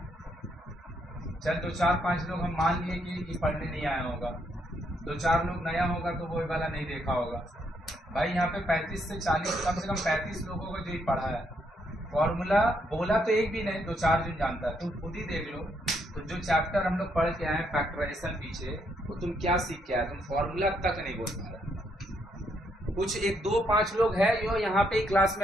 चल 2-4-5 लोग हम मान लिए कि पढ़ने नहीं आया होगा, 2-4 लोग नया होगा तो वो वाला नहीं देखा होगा। भाई यहाँ पे 35 से 40 कम से कम 35 लोगों को जो ही पढ़ा है फॉर्मूला, बोला तो एक भी नहीं, 2-4 जन जानता है। तुम खुद ही देख लो तो जो चैप्टर हम लोग पढ़ के आए फैक्टराइजेशन पीछे, वो तुम क्या सीख के आए? तुम फॉर्मूला तक नहीं बोल पा रहे। कुछ 1-2-5 लोग है जो यहाँ पे क्लास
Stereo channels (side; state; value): both; normal; correlation 0.75